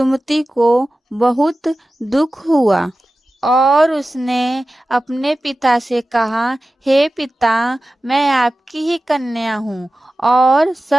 को बहुत दुख हुआ और उसने अपने पिता से कहा, हे पिता, मैं आपकी ही कन्या हूँ और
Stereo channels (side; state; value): both; normal; correlation 0.95